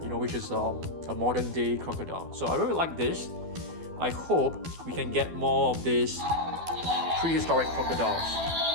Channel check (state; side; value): late; left; 12 ms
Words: which is a modern day crocodile. So I really like this. I hope we can get more of these prehistoric crocodiles.